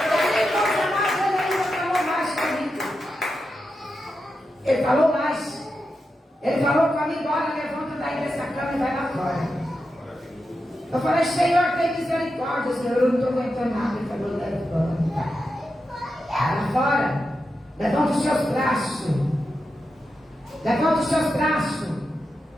Ele falou mais. Ele falou comigo, olha, levanta daí dessa cama e vai lá fora. Eu falei, Senhor, tem misericórdia, Senhor, eu não estou aguentando nada. Ele falou, levanta. Vai lá fora. Levanta os seus braços. Levanta os seus braços.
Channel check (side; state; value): both; normal; correlation 0.88